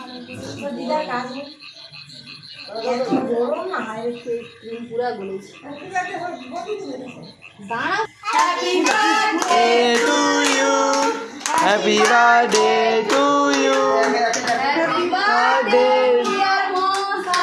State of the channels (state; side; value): identical; both; correlation 1.00